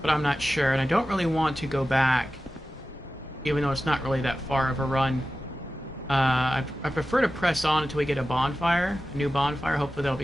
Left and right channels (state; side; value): normal; both; correlation 0.94